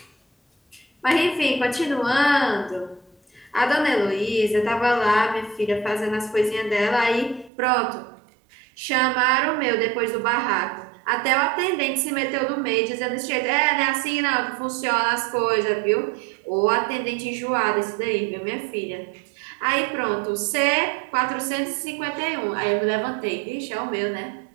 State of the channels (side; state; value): left; drops out; at 7.5 s